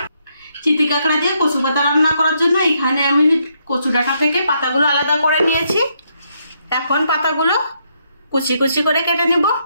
চিতি কাঁকড়া দিয়ে কচু পাতা রান্না করার জন্য এখানে আমি কচু ডাঁটা থেকে পাতাগুলো আলাদা করে নিয়েছি। এখন পাতাগুলো কুচি কুচি করে কেটে নিব।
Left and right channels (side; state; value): both; inverted; correlation -0.76